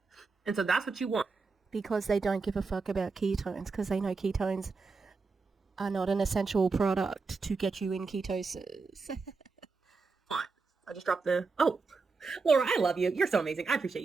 And so that's what you want. Because they don't give a fuck about ketones, because they know ketones are not an essential product to get you in ketosis. Fine. I just dropped the... Oh, Laura, I love you. You're so amazing. I appreciate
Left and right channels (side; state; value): left; quieter; 4.4 dB